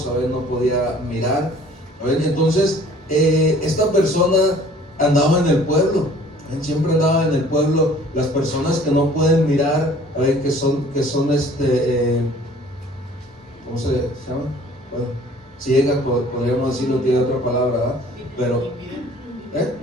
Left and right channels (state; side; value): normal; both; correlation 0.52